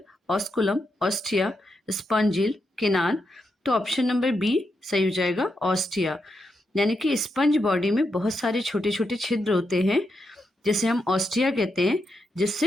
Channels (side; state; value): both; normal; correlation 0.84